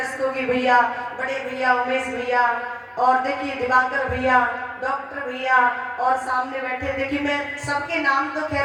भैया, बड़े भैया उमेश भैया, और देखिए दिवाकर भैया, डॉक्टर भैया, और सामने बैठे, देखिए मैं सबके नाम तो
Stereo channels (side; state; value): both; identical; correlation 1.00